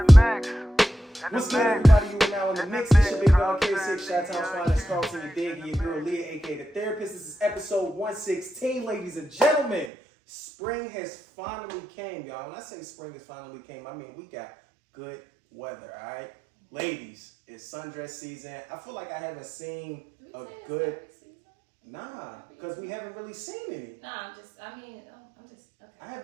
good, everybody? You are now in the mix. It's your big dog K6, Chi-Town's finest, CARLTON, your dig, and your girl Leah, aka the therapist. This is episode 116, ladies and gentlemen. Spring has finally came, y'all. When I say spring has finally came, I mean we got good weather, all right? Ladies, it's sundress season. I feel like I haven't seen a good... Nah, because we haven't really seen any. Nah, I'm just, okay. I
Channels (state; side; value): drops out; left; at 9.9 s